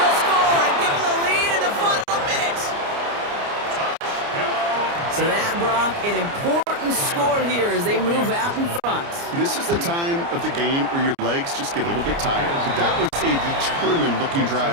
score and give him the lead in the final minute. So that, Brock, an important score here as they move out in front. This is the time of the game where your legs just get a little bit tired. But that was a determined looking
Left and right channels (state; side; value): late; left; 29 ms